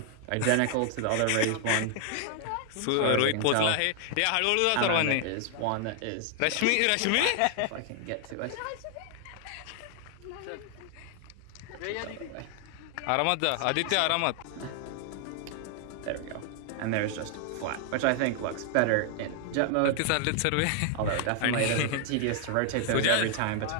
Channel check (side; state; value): both; different; correlation 0.00